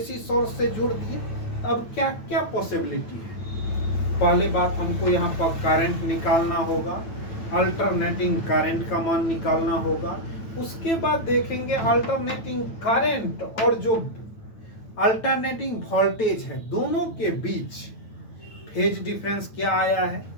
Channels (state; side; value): late; right; 9.1 ms